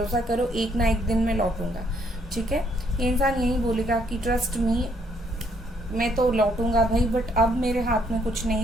करो, एक ना एक दिन मैं लौटूंगा, ठीक है। ये इंसान यही बोलेगा कि ट्रस्ट मी, मैं तो लौटूंगा भाई, बट अब मेरे हाथ में कुछ नहीं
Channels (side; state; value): both; normal; correlation 0.69